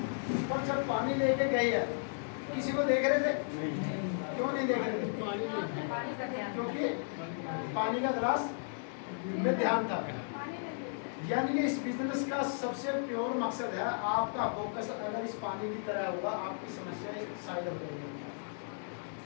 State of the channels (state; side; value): silent; right; digital silence